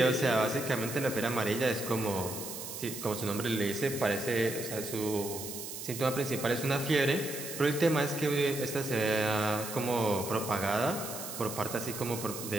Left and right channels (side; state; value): right; noise; hiss, 8 dB below the sound